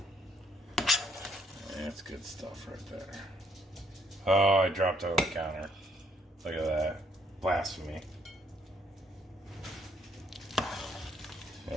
That's good stuff right there. Oh, I dropped it on the counter. Look at that. Blasphemy.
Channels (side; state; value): both; normal; correlation 0.69